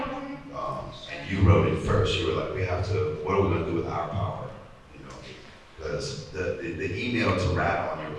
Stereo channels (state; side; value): identical; both; correlation 1.00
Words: And you wrote it first. You were like, we have to. What are we gonna do with our power? You know, because the email to rat on your